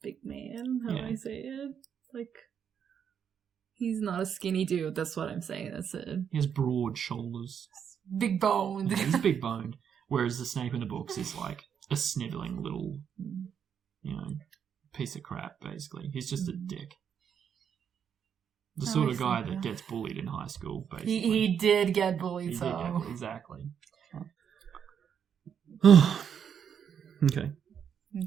big man. How do I say it? Like he's not a skinny dude. That's what I'm saying. That's it. He has broad shoulders. Big boned. Yeah, he's big boned. Whereas the Snape in the books is like a snivelling little, you know, piece of crap, basically. He's just a dick. The sort of guy that gets bullied in high school, basically. He did get bullied, exactly. Okay.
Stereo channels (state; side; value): quieter; left; 7.9 dB